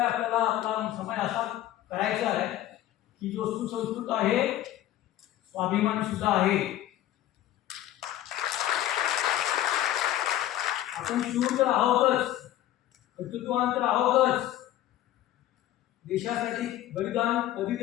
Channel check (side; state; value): right; quieter; 13.4 dB